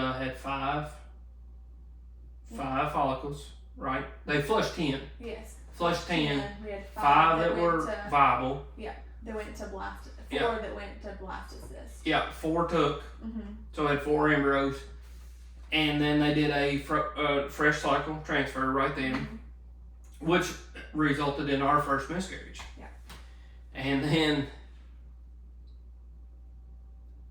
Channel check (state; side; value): identical; both; correlation 1.00